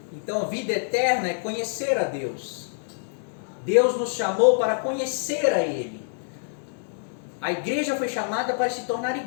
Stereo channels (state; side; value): silent; right; 61 dB below the other